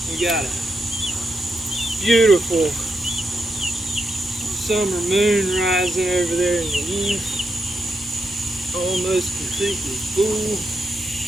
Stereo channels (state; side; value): normal; both; correlation 0.84